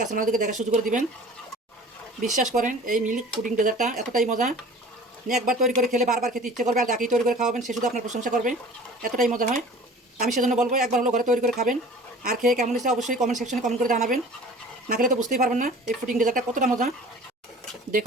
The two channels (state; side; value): normal; both; correlation 0.44